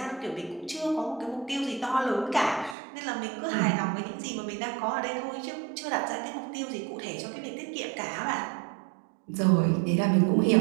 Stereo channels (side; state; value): left; drops out; at 2.8 s